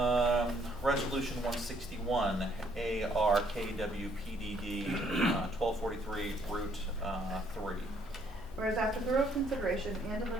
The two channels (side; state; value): both; normal; correlation 0.67